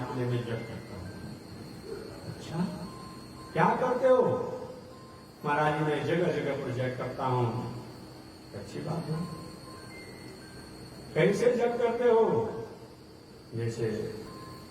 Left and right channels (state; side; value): identical; both; correlation 1.00